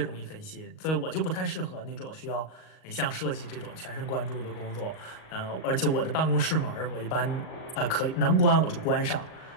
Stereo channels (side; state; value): right; late; 38 ms